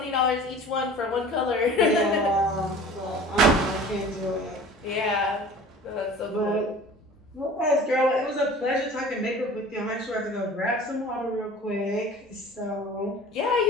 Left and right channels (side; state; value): both; normal; correlation 0.43